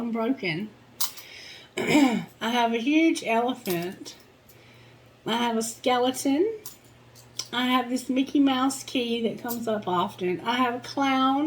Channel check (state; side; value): identical; both; correlation 1.00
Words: I have a huge elephant. I have a skeleton. I have this Mickey Mouse key that comes up often. I have a